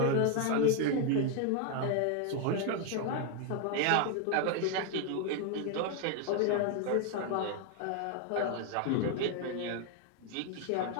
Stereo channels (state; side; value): different; both; correlation 0.01